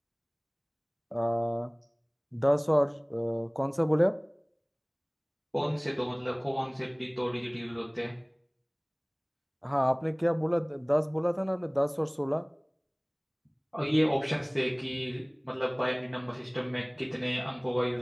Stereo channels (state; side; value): identical; both; correlation 1.00